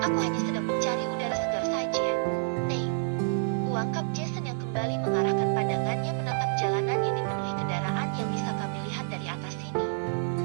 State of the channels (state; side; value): silent; left; digital silence